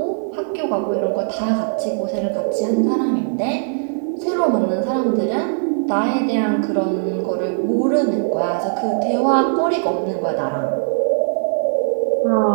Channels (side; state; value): left; silent; digital silence